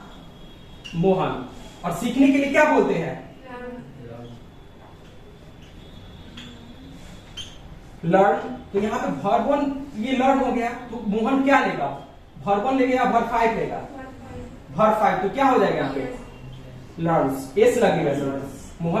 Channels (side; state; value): both; identical; correlation 1.00